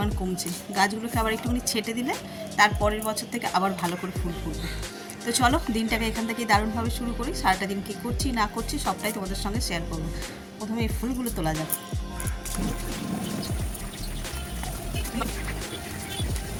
কমছে। গাছগুলোকে আবার একটুখানি ছেটে দিলে তার পরের বছর থেকে আবার ভালো করে ফুল ফুটবে। তো চলো দিনটাকে এখান থেকে দারুণভাবে শুরু করি। সারাটা দিন কী করছি না করছি সবটাই তোমাদের সঙ্গে শেয়ার করবো। প্রথমে এই ফুলগুলো তোলা যাক।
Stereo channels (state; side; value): identical; both; correlation 1.00